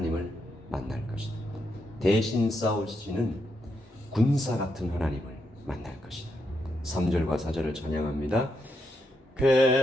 만날 것이다. 대신 싸우시는 군사 같은 하나님을 만날 것이다. 3절과 4절을 찬양합니다.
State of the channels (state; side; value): normal; both; correlation 0.81